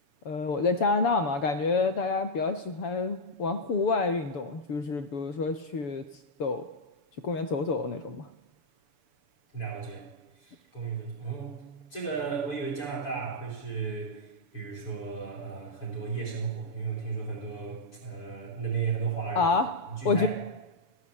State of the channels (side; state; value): right; late; 7.0 ms